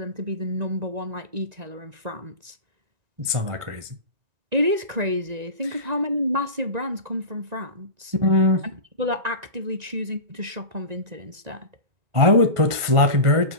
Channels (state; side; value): late; left; 1.5 ms